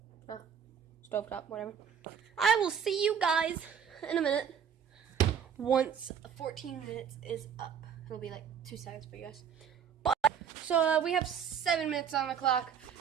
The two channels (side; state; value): left; quieter; 7.8 dB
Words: Or stove top, whatever. I will see you guys in a minute. Once 14 minutes is up. It'll be like 2 seconds for you guys. So we have 7 minutes on the clock.